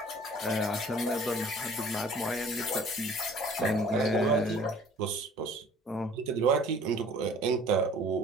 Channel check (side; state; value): both; normal; correlation 0.51